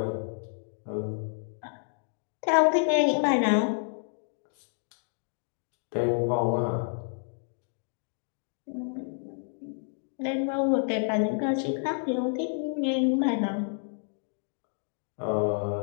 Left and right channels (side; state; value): right; silent; digital silence